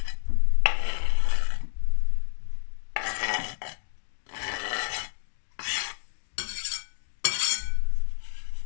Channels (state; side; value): silent; right; digital silence